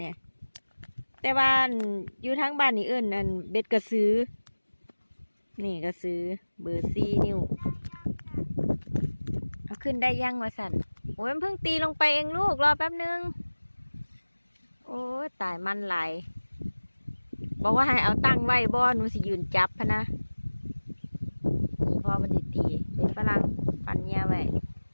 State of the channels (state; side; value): inverted; both; correlation -1.00